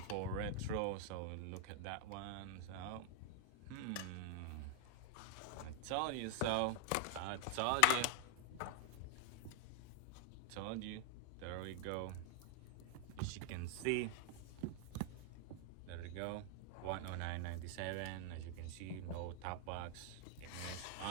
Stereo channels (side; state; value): both; different; correlation 0.00